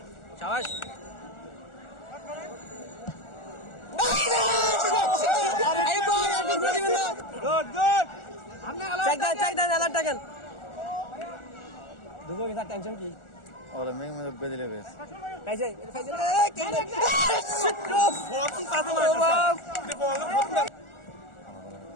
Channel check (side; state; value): right; late; 1.4 ms